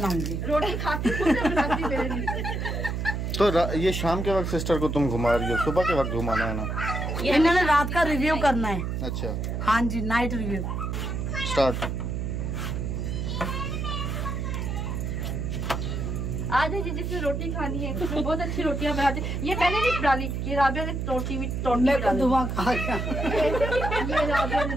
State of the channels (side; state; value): right; noise; hum, 2 dB below the sound